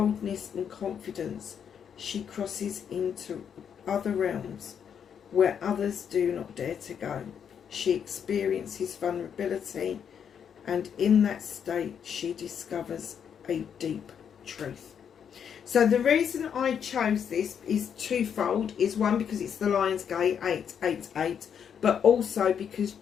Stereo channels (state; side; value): quieter; right; 7.9 dB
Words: and confidence, she crosses into other realms where others do not dare to go. She experiences vulnerability, and in that state she discovers a deep truth. So the reason I chose this is twofold. Is one, because it's the Lion's Gate 888, but also because